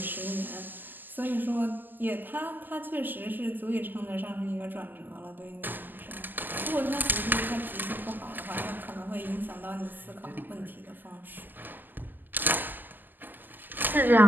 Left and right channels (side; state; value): left; late; 0.088 ms